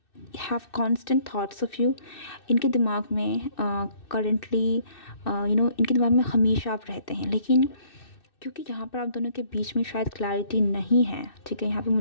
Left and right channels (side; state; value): right; late; 2.6 ms